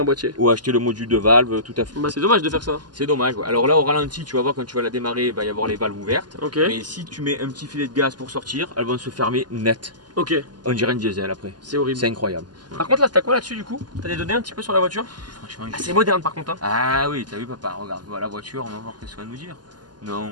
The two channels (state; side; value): late; left; 0.70 ms